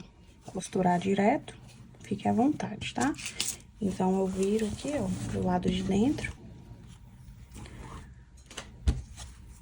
costurar direto, fique à vontade, tá? Então, eu viro aqui, ó, pro lado de dentro.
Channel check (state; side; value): identical; both; correlation 1.00